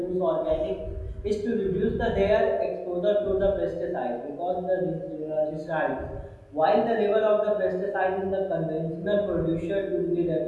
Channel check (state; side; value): identical; both; correlation 1.00